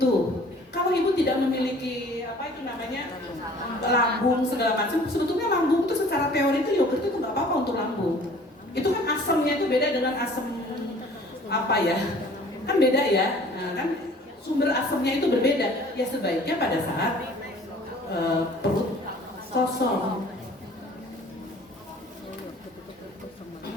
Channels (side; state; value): both; normal; correlation 0.51